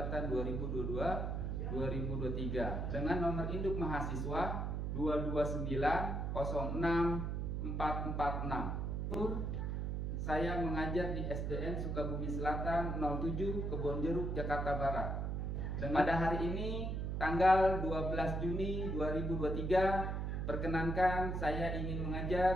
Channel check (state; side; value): noise; right; hum, 1 dB below the sound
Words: 2022-2023 dengan nomor induk mahasiswa 229064446. Saya mengajar di SDN Sukabumi Selatan 07 Kebonjeruk, Jakarta Barat. Dan pada hari ini tanggal 12 Juni 2023, perkenankan saya ingin